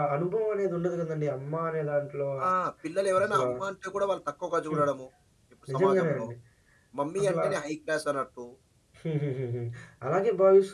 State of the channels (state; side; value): identical; both; correlation 1.00